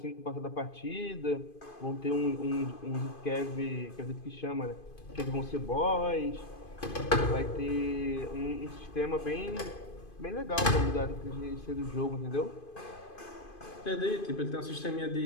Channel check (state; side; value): late; right; 2.5 ms